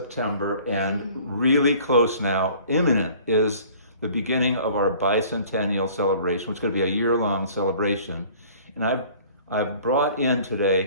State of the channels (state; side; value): inverted; both; correlation -0.50